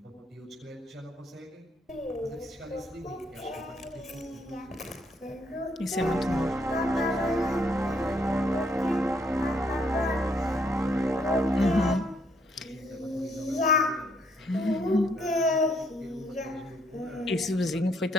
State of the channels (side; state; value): both; normal; correlation 0.70